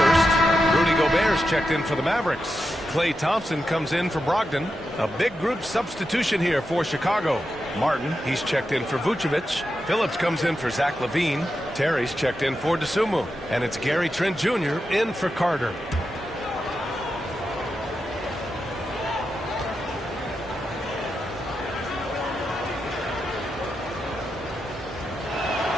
Rudy Gobert's checked in for the Mavericks. Klay Thompson comes in for Brogdon. A big group substitution here for Chicago. Martin, he's checked in for Vucevic. Phillips comes in for Zach LaVine. Terry's checked in for DeSumo. And it's Gary Trent Jr. in for Carter.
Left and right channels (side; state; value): both; normal; correlation 0.88